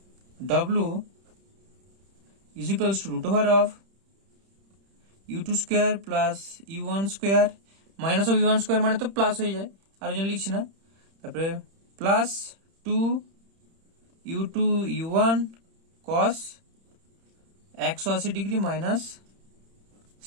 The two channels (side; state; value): left; late; 31 ms